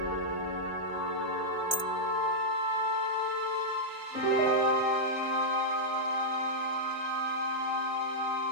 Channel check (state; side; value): late; left; 2.4 ms